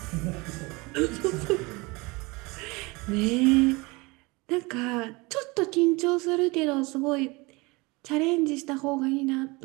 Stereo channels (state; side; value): quieter; left; 25.1 dB